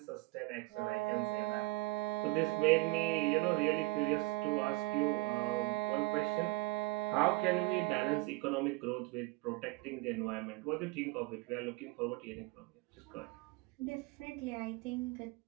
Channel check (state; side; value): quieter; left; 22.7 dB